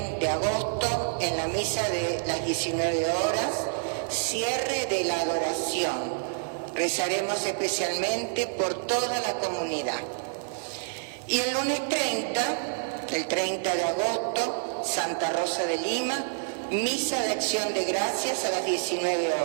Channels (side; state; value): left; silent; digital silence